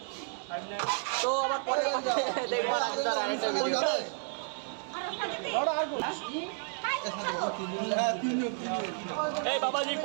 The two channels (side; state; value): left; silent; 57 dB below the other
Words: তো আবার পরে দেখবো রাজুদার আরেকটা ভিডিও। এই বাবাজি